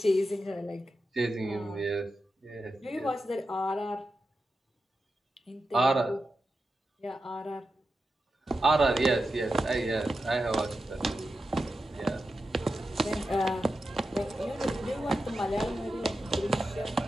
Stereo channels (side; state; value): both; normal; correlation 0.90